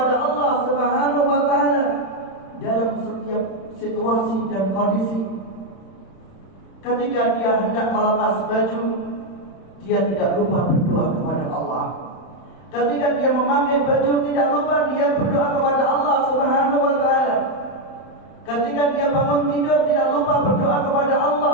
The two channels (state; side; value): late; right; 31 ms